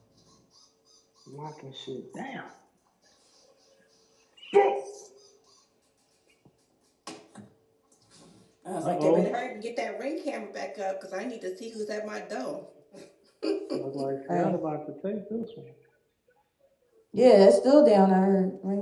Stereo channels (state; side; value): identical; both; correlation 1.00